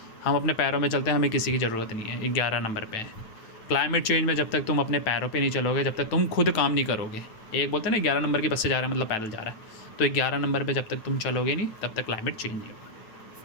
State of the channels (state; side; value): late; right; 9.1 ms